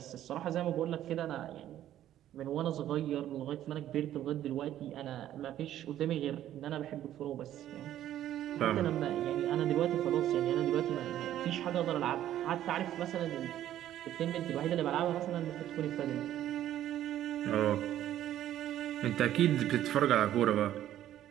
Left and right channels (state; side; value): quieter; left; 12.2 dB